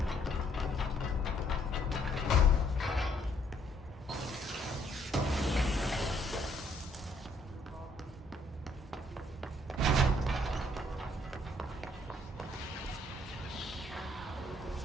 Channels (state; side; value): normal; both; correlation 0.66